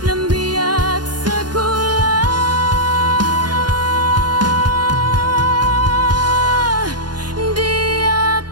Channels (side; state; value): left; late; 0.70 ms